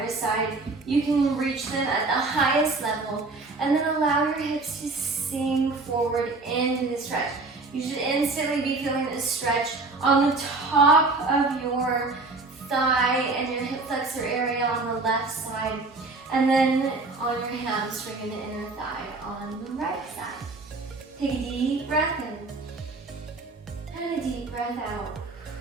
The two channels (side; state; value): left; quieter; 3.5 dB